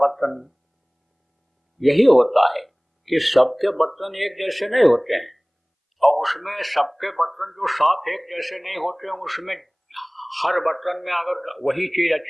यही होता है कि सबके बर्तन एक जैसे नहीं होते हैं और उसमें सबके बर्तन जो साफ एक जैसे नहीं होते हैं, उसमें हर बर्तन में अगर वही चीज,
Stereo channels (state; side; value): identical; both; correlation 1.00